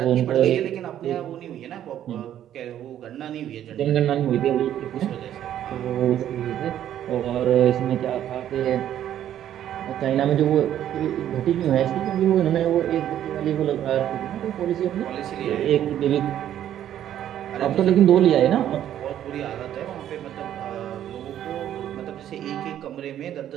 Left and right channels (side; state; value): left; quieter; 11.1 dB